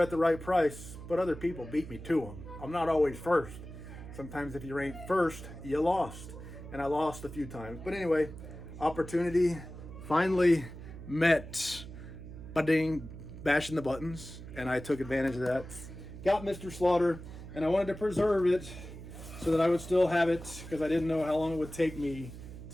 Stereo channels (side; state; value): right; noise; hum, 13 dB below the sound